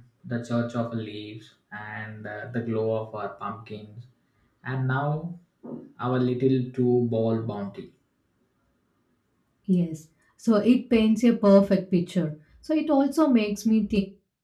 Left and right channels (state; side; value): identical; both; correlation 1.00